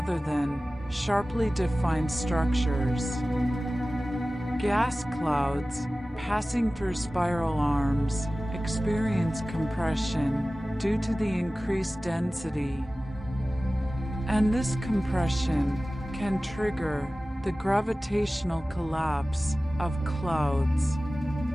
than sharply defined structures. Gas clouds passing through spiral arms experience compression due to the increased density, and this compression can trigger the gravitational collapse of clouds,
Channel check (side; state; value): both; normal; correlation 0.97